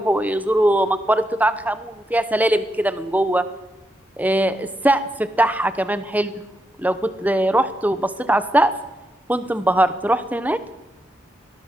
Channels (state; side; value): normal; both; correlation 0.83